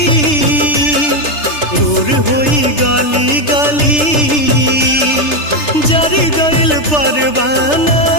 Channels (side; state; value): right; late; 3.3 ms